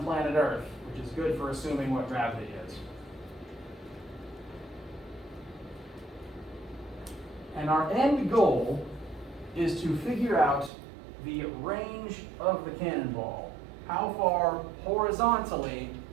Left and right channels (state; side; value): drops out; left; at 10.7 s